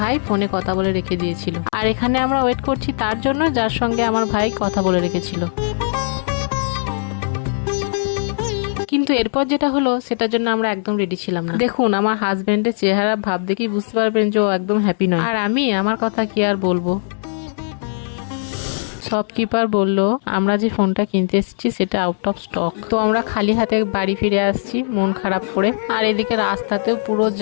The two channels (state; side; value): silent; right; 66 dB below the other